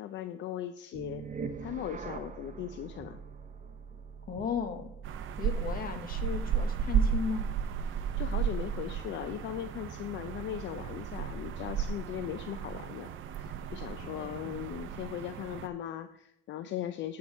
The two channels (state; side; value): normal; both; correlation 0.35